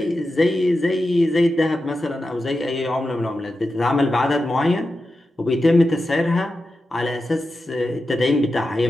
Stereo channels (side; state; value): both; normal; correlation 0.91